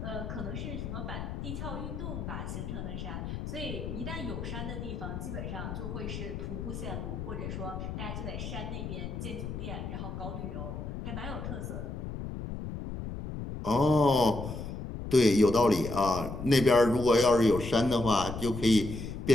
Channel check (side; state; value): left; noise; rumble, 6 dB below the sound